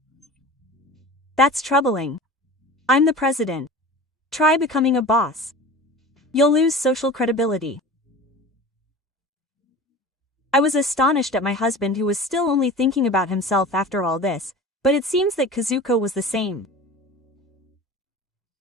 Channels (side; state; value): both; normal; correlation 0.37